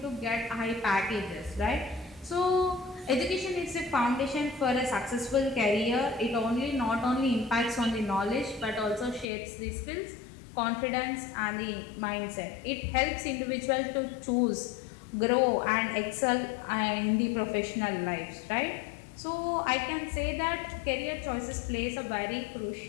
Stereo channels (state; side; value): drops out; right; at 9.3 s